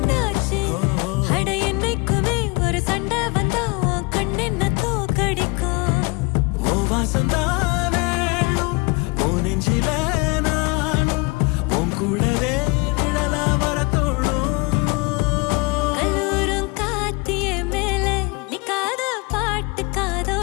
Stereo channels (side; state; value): right; quieter; 27.7 dB